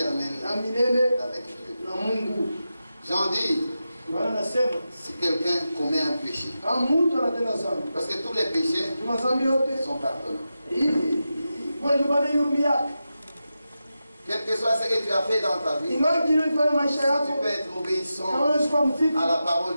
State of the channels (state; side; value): inverted; both; correlation -0.91